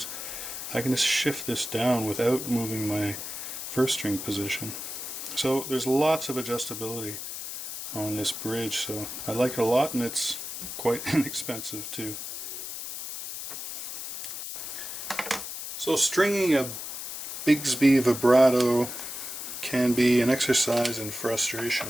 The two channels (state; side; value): noise; left; hiss, 7 dB below the sound